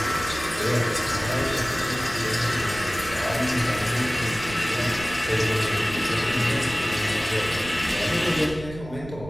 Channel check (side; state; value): right; noise; rumble, 14 dB below the sound